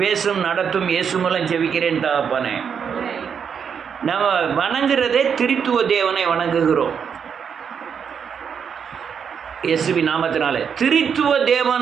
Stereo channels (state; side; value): quieter; left; 7.1 dB